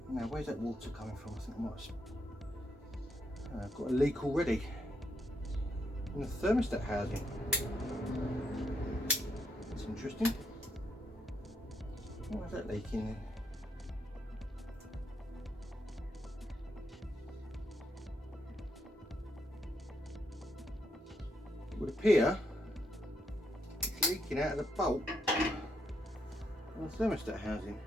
Now where's that water coming from? I think I might have I've got a leak already in the thermostat housing. That's interesting. Why is that leaking there? It would appear it's leaking out of the bolt on the thermostat housing.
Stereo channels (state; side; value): normal; both; correlation 0.78